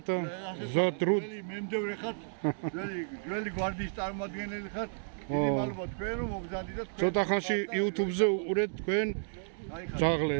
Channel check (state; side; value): silent; left; digital silence